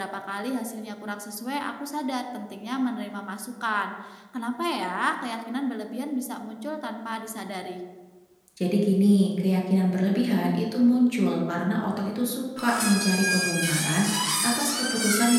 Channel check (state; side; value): identical; both; correlation 1.00